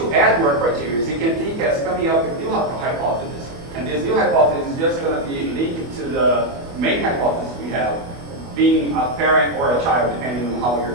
add more criteria, you can think as coming up with new hypothesis. And this new hypothesis is just going to be linked to the main hypothesis we have, being a parent or a child, depending on how you're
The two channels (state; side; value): late; left; 25 ms